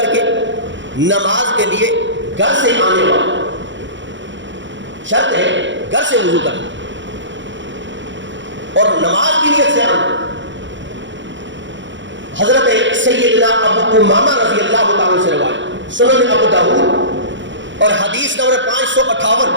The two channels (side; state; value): left; late; 0.54 ms